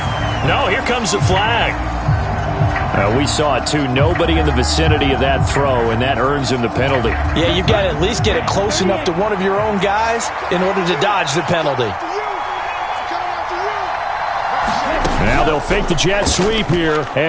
No, here comes the flag. We saw it, too. Nobody in the vicinity of that throw, and that earns him the penalty. Yeah, you've got to at least get it close enough to one of your own guys in order to dodge the penalty. Now they'll fake the jet sweep here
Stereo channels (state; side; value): identical; both; correlation 1.00